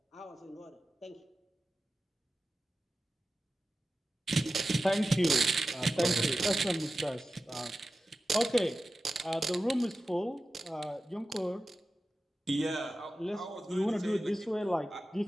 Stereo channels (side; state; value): both; normal; correlation 0.93